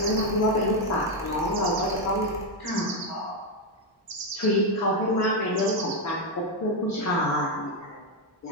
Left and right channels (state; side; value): normal; both; correlation 0.04